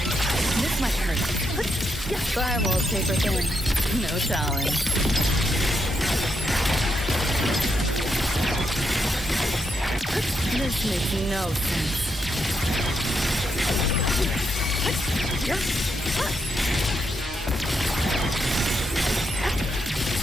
This might hurt. Firewall's paper thin. No challenge. This makes no sense.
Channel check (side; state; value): both; normal; correlation 0.81